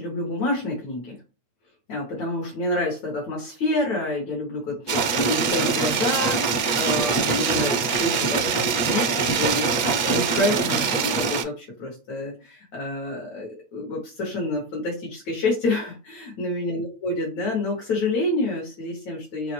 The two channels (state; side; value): late; right; 8.5 ms